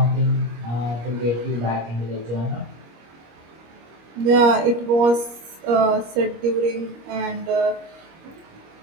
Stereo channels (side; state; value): left; late; 25 ms